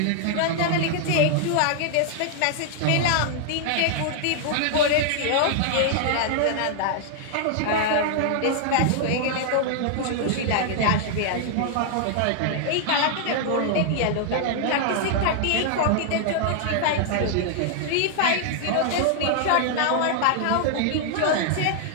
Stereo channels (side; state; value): both; different; correlation 0.00